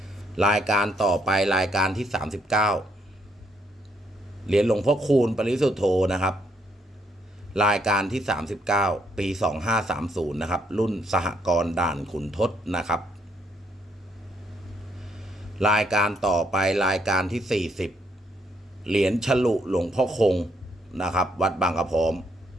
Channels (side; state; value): both; normal; correlation 0.73